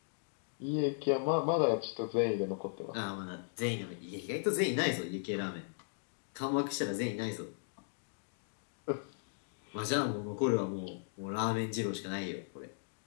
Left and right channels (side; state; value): right; silent; digital silence